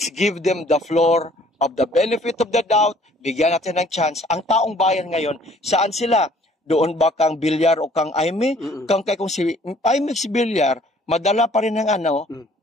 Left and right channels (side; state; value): both; normal; correlation 0.57